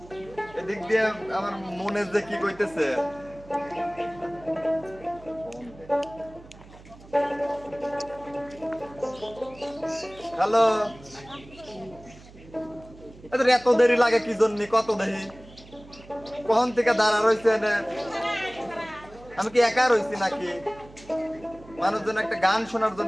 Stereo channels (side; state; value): right; noise; hum, 21 dB below the sound